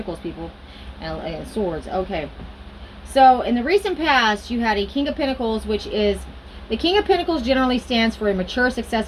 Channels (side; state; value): both; identical; correlation 1.00